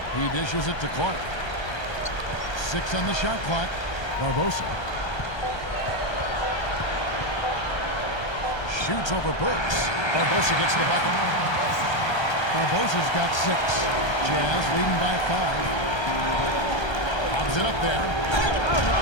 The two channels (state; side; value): late; right; 1.3 ms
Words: He dishes it to Clark. 6 on the shot clock. Barbosa. Shoots over Burks. Barbosa gets the bucket. Barbosa's got 6. Jazz leading by 5. Lobs it up there. How